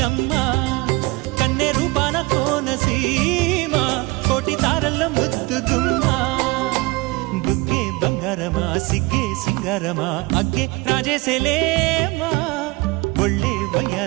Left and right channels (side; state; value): left; quieter; 23.5 dB